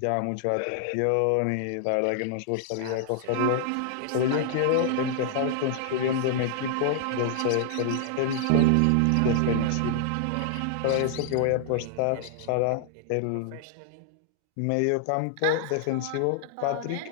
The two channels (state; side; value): different; both; correlation -0.01